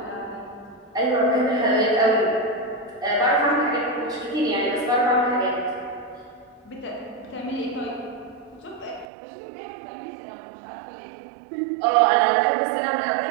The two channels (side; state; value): left; drops out; at 9.1 s